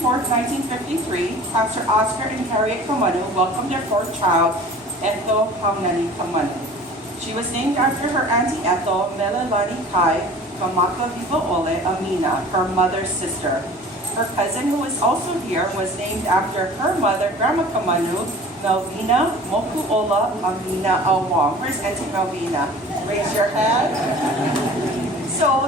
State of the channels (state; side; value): normal; both; correlation 0.44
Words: Pastor Oscar and Harriet Kamanu welcomed their fourth child, Ethel Nani Kamanu. She was named after her Auntie Ethel, Melelani Kai Kamaka Viva Ole Amina, her mother's sister. Her cousin, who is also here, was named after her mother, Grandma Kamanu, Melvina Mokuola Amina Awang. Where's Auntie Melvina? Raise your hand.